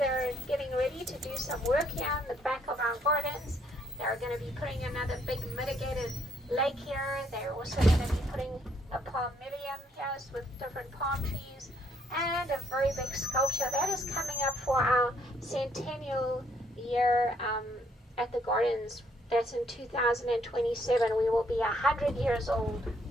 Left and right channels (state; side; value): normal; both; correlation 0.69